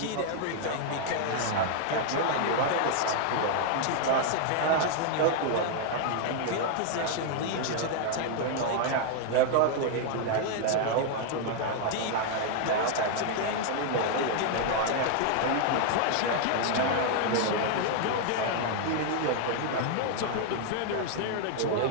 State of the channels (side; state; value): both; different; correlation 0.00